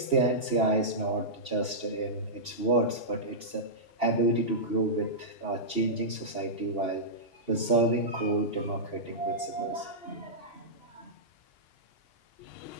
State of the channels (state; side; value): late; right; 2.8 ms